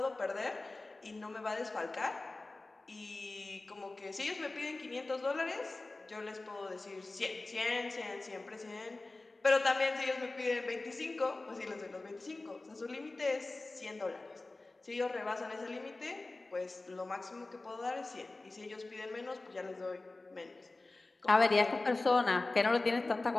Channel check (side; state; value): right; quieter; 3.2 dB